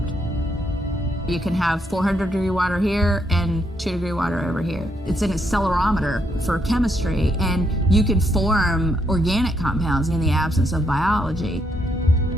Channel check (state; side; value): normal; both; correlation 0.76